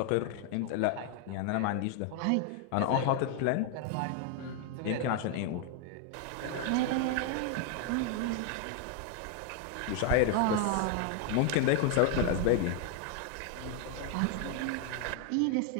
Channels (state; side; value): different; both; correlation 0.00